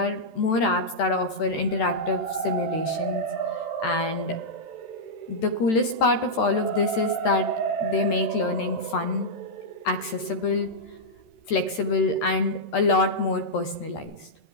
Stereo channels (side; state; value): right; late; 13 ms